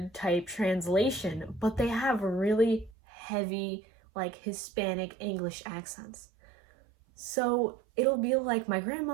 type translation, but they have really heavy like Hispanic English accents. So it'll be like my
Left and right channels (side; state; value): left; drops out; at 3.0 s